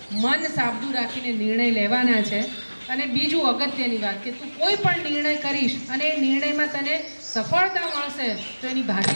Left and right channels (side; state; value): both; inverted; correlation -1.00